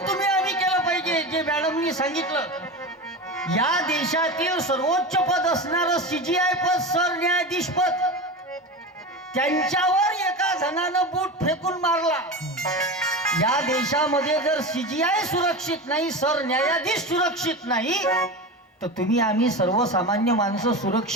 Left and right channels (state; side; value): normal; both; correlation 0.25